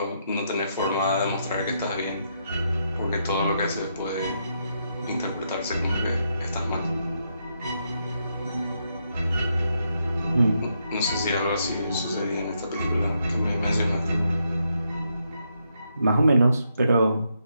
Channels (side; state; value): both; inverted; correlation -0.79